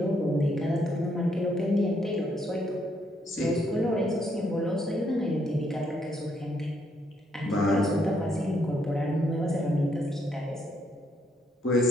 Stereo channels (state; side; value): normal; both; correlation 0.73